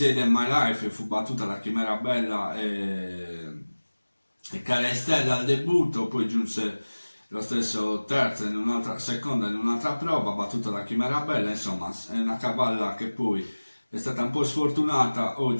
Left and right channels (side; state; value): both; inverted; correlation -1.00